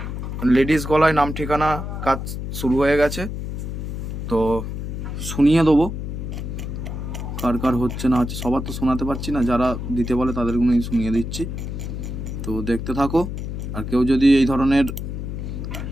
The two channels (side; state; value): left; noise; hum, 5 dB below the sound